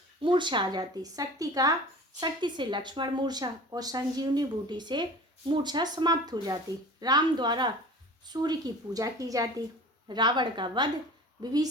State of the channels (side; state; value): both; normal; correlation 0.40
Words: मूर्छा आ जाती। शक्ति से लक्ष्मण मूर्छा और संजीवनी बूटी से मूर्छा समाप्त हो जाती। राम द्वारा सूर्य की पूजा की जाती। रावण का वध,